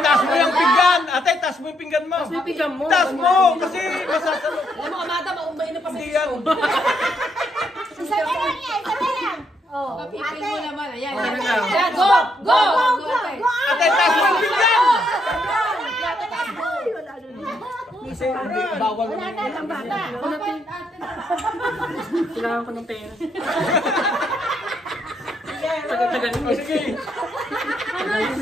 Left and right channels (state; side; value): normal; both; correlation 0.75